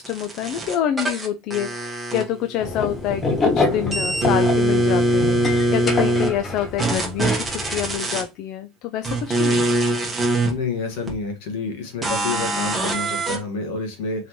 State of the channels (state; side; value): normal; both; correlation 0.53